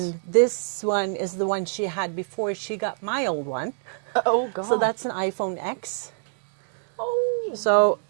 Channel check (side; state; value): left; silent; digital silence